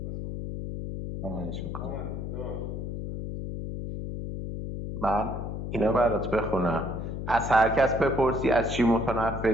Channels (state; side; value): noise; left; hum, 5 dB below the sound